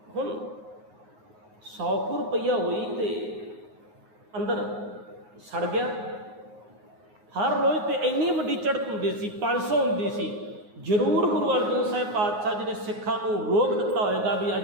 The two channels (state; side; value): late; left; 9.5 ms